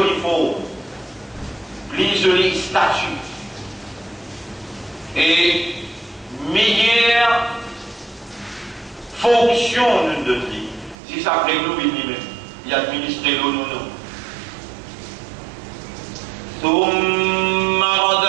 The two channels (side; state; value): left; drops out; at 11.0 s